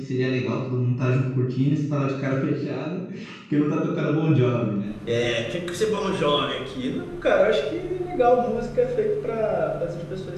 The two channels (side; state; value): both; identical; correlation 1.00